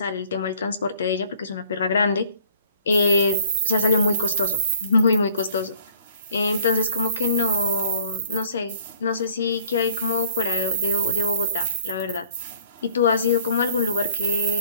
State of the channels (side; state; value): both; inverted; correlation -0.56